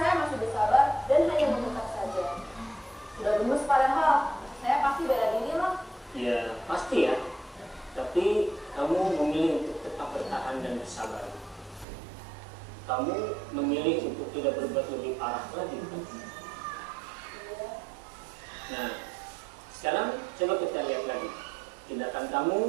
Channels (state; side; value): drops out; left; at 11.9 s